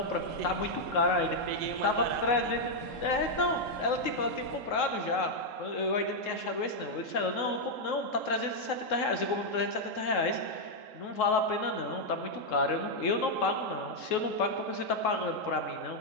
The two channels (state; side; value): late; right; 3.7 ms